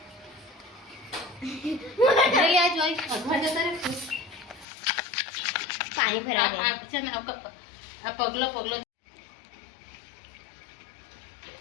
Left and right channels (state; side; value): drops out; right; at 4.7 s